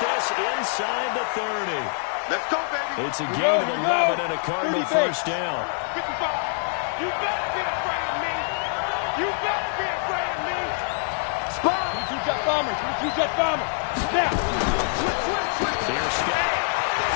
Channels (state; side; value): silent; right; 60 dB below the other